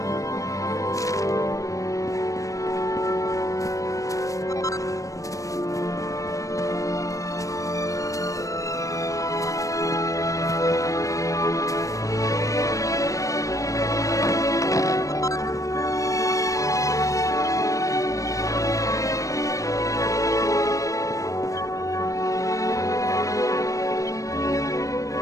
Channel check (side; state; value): right; late; 0.16 ms